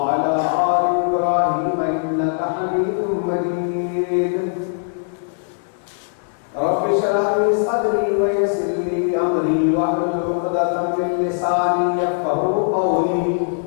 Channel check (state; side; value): silent; right; 61 dB below the other